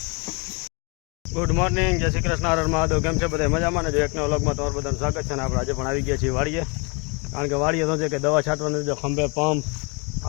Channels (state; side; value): quieter; right; 31.9 dB